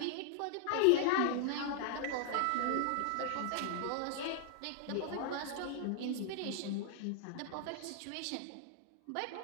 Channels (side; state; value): both; different; correlation 0.00